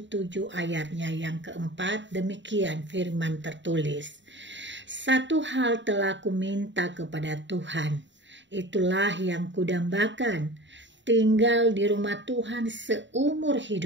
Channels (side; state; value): left; late; 0.53 ms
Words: ayatnya yang keempat. Demikian firman tertulis. Satu hal telah kuminta kepada Tuhan, itulah yang kudambakan, tinggal di rumah Tuhan seumur